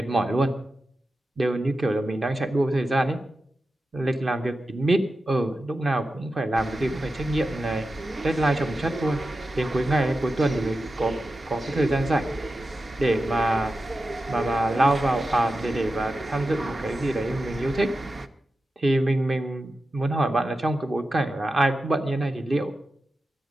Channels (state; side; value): normal; both; correlation 0.92